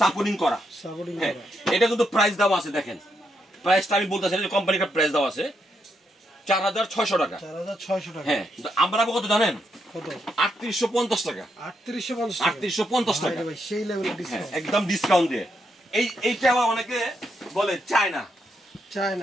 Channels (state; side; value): normal; both; correlation 0.80